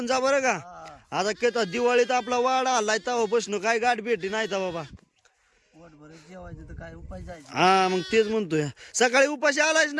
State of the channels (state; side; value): identical; both; correlation 1.00